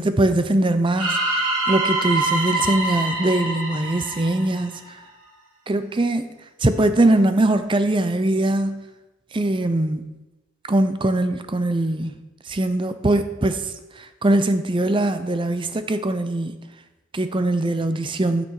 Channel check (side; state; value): both; normal; correlation 0.74